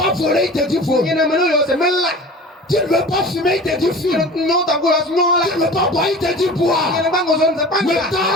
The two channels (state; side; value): normal; both; correlation 0.38